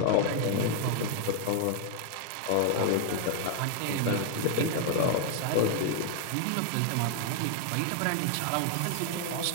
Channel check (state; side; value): different; both; correlation 0.00